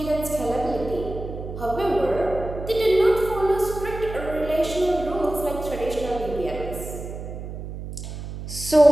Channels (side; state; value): right; noise; hum, 9 dB below the sound